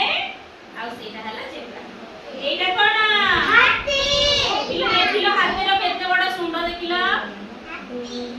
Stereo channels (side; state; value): both; identical; correlation 1.00